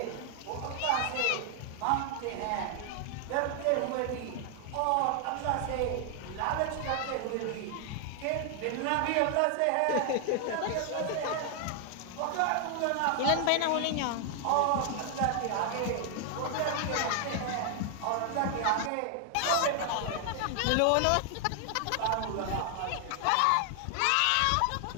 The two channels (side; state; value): both; different; correlation 0.00